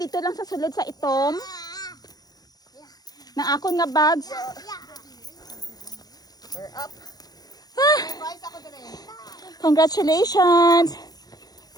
lang sa sulod sa itom. Ng akong nga bags. We're up. Ah, Rise ako din. Congratulations!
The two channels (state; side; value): late; right; 0.19 ms